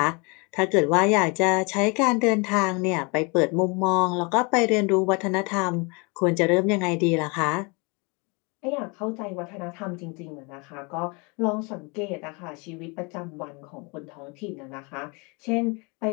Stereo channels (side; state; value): right; quieter; 30.3 dB